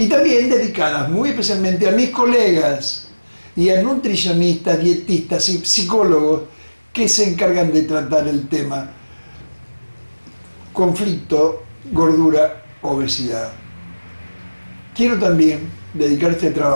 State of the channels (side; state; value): both; inverted; correlation -1.00